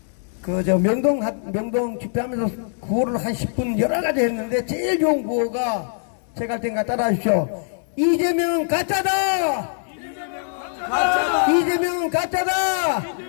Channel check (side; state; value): right; silent; digital silence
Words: 명동 집회하면서 구호를 한 10분 여러 가지 했는데 제일 좋은 구호가 제가 할 테니까 따라 하십시오. 이재명은 가짜다! 이재명은 가짜다!